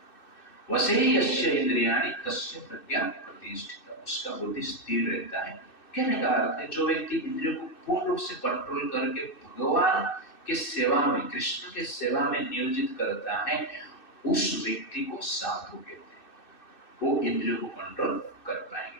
वसेहि यस्य इंद्रियाणि तस्य प्रज्ञा प्रतिष्ठिता, उसका बुद्धि स्थिर रहता है। कहने का अर्थ है जो व्यक्ति इंद्रियों को पूर्ण रूप से कंट्रोल करके भगवान के सेवा में, कृष्ण के सेवा में नियोजित करता है, उस व्यक्ति को साधु कहते हैं। वो इंद्रियों को कंट्रोल कर पाएंगे।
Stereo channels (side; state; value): right; late; 2.6 ms